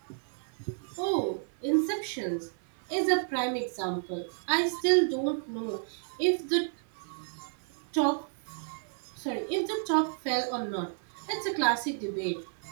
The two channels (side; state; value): left; silent; 57 dB below the other